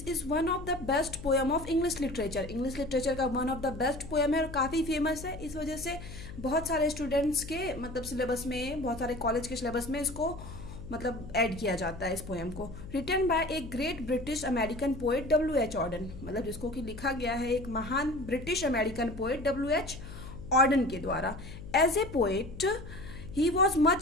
is one of the best poem of English literature. English literature का one of the best poem है और काफ़ी फेमस है। इस वजह से बहुत सारे स्टूडेंट्स के मतलब सिलेबस में, बहुत सारे कॉलेज के सिलेबस में इसको मतलब ऐड किया जाता है इस पोएम को। Written by a great British American poet W.H. Auden, मतलब जिसको कि लिखा गया है एक महान British American poet W.H. Auden के द्वारा। As a poet he was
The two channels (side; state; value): left; noise; hum, 12 dB below the sound